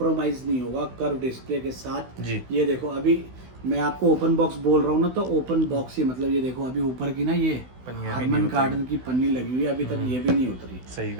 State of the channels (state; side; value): late; left; 16 ms